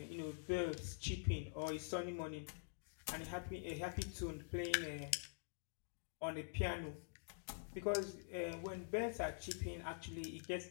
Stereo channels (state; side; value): silent; right; digital silence